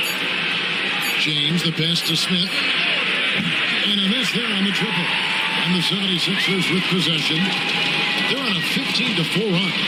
James, the pass to Smith. And a miss there on the triple. And the 76ers with possession. They're on a 15-4 run.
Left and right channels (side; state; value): both; identical; correlation 1.00